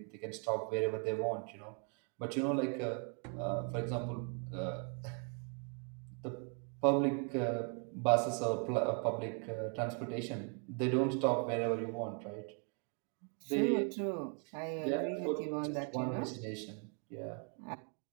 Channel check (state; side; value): quieter; left; 38.5 dB